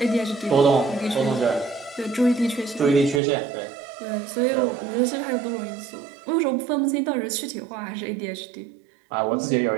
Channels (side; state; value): left; drops out; at 3.2 s